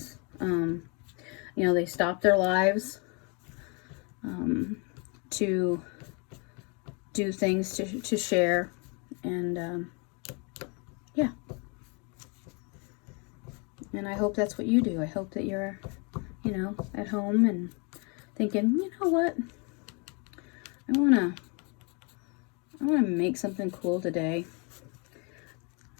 You know, they stop their lives to do things to share. And yeah. And I hope that's what you do. I hope that you're, you know, at home and thinking, you know what? I wanna make something cool today.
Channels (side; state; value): right; quieter; 33.2 dB